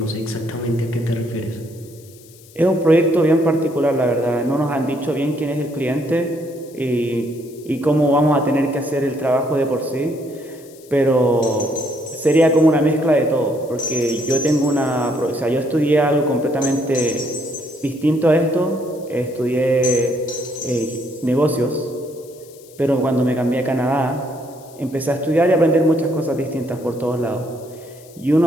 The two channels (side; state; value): left; noise; hiss, 24 dB below the sound